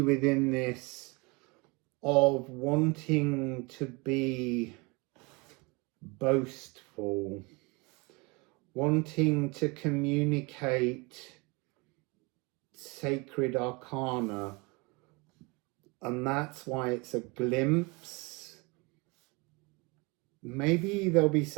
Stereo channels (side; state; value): left; quieter; 27.4 dB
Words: within this of wanting to be boastful, wanting to communicate sacred arcana, and that's why it's a glimpse. Maybe there'll be